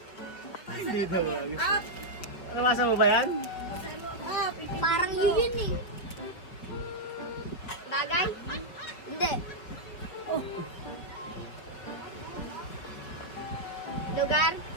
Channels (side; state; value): right; late; 5.6 ms